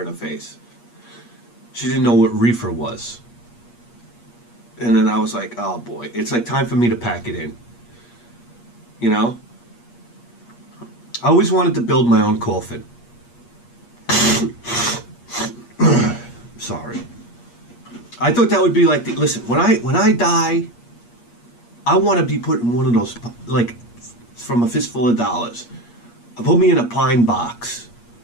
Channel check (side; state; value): right; late; 8.5 ms